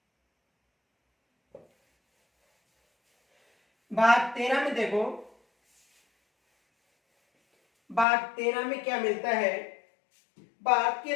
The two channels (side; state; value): right; drops out; at 8.1 s